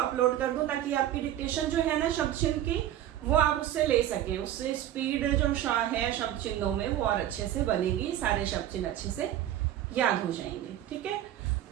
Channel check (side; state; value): left; quieter; 12.2 dB